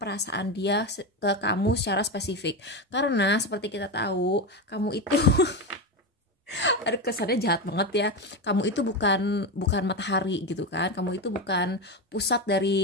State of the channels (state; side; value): normal; both; correlation 0.16